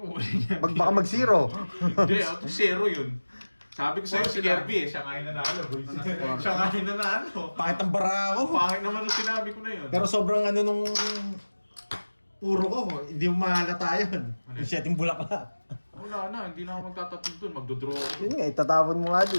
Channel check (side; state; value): both; inverted; correlation -1.00